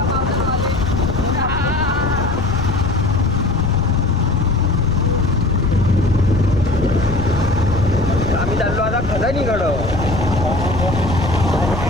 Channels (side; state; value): left; noise; rumble, 5 dB below the sound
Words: आम्ही चाललो आता खदानीकडं